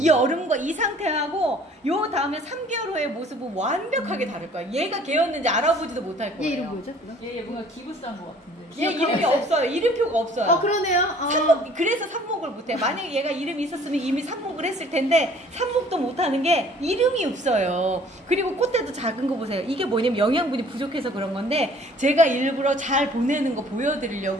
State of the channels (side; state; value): both; normal; correlation 0.54